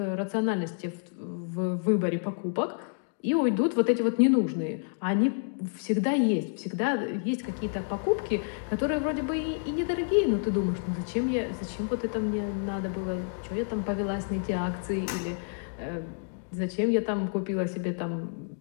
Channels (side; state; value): right; silent; digital silence